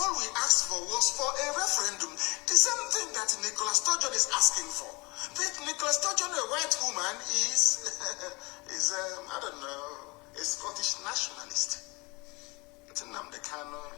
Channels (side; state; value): right; quieter; 26.5 dB